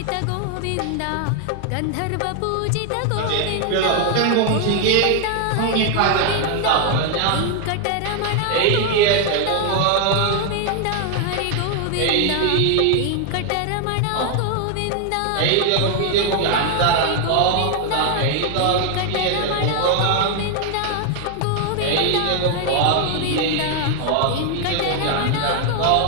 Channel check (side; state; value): both; different; correlation 0.01